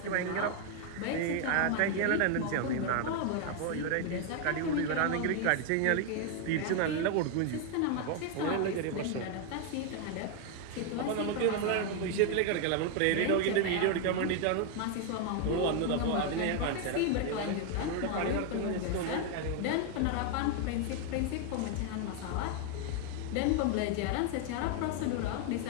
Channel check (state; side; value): different; both; correlation 0.01